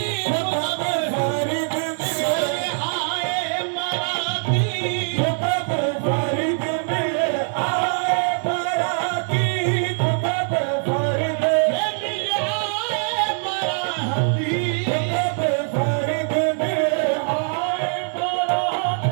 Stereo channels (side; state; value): left; silent; 64 dB below the other